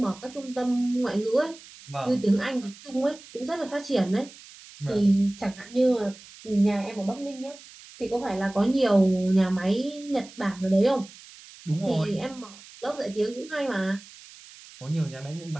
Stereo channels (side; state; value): right; noise; hiss, 20 dB below the sound